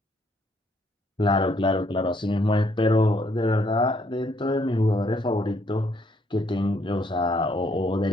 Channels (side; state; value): both; normal; correlation 0.69